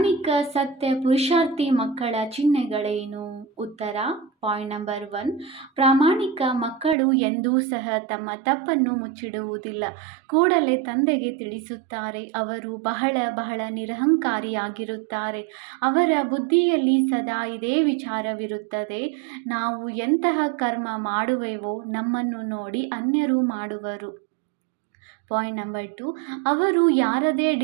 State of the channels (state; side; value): drops out; left; at 7.0 s